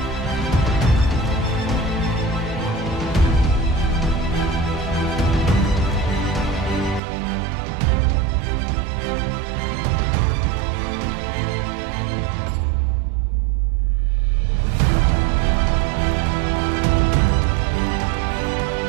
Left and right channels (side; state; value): left; drops out; at 7.0 s